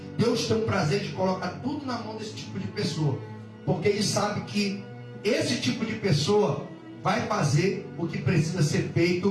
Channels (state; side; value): identical; both; correlation 1.00